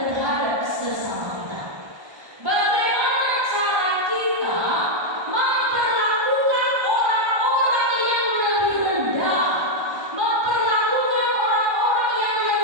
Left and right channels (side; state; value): left; late; 1.2 ms